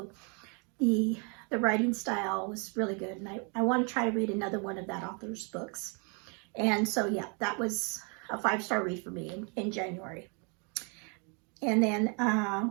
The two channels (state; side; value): quieter; left; 35.9 dB